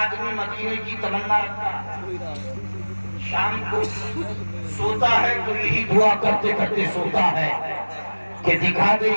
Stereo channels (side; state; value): both; inverted; correlation -1.00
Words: مدینے کی تمنا رکھتا ہے. شام کو سوتا ہے تو یہی دعا کرتے کرتے سوتا ہے کہ دکھا دے